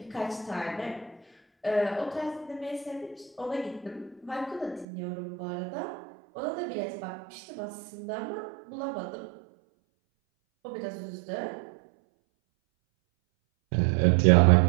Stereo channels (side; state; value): left; drops out; at 4.9 s